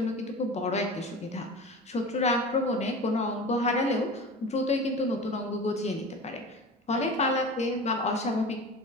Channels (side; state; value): both; normal; correlation 0.33